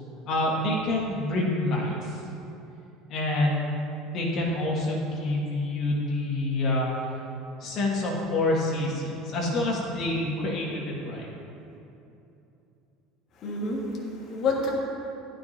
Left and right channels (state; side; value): normal; both; correlation 0.37